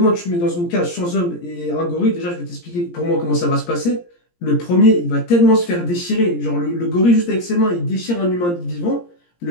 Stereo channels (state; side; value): late; right; 17 ms